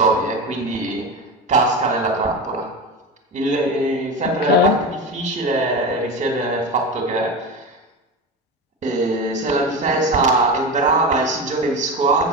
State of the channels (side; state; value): both; normal; correlation 0.23